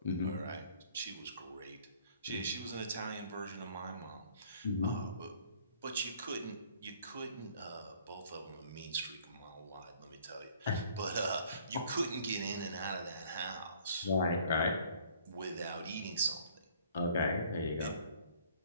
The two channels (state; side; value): inverted; both; correlation -0.56